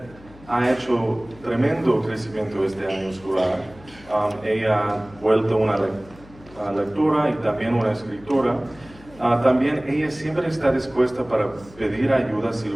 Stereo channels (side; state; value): left; noise; hum, 22 dB below the sound